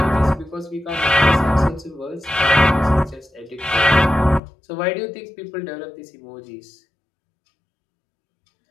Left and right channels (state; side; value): drops out; right; at 4.4 s